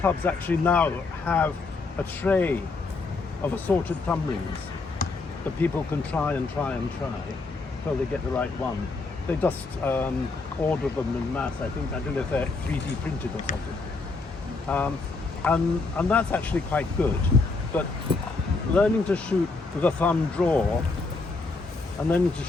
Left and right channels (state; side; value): quieter; right; 3.8 dB